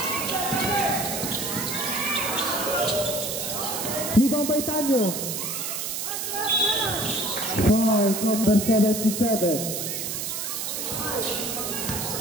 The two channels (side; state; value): right; noise; hiss, 3 dB below the sound